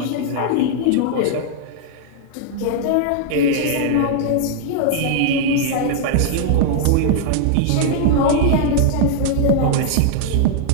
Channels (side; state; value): both; different; correlation -0.01